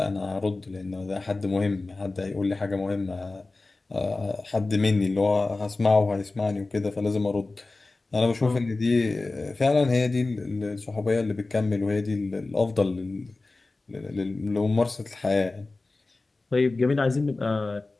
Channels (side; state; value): right; quieter; 3.3 dB